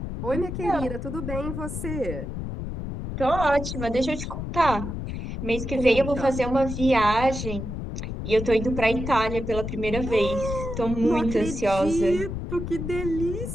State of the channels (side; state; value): left; noise; rumble, 5 dB below the sound